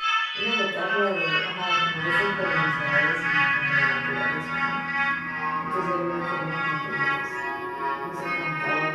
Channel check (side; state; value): both; identical; correlation 1.00